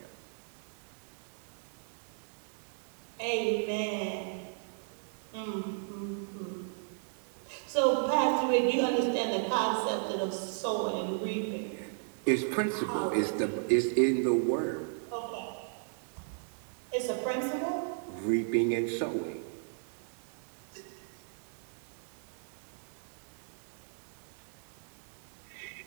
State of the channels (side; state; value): left; silent; digital silence